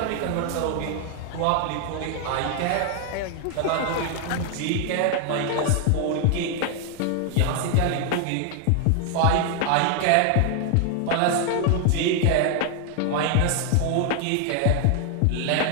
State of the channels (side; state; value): both; different; correlation 0.00